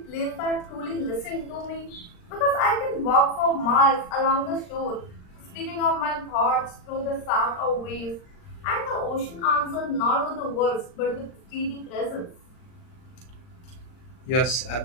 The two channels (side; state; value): right; late; 39 ms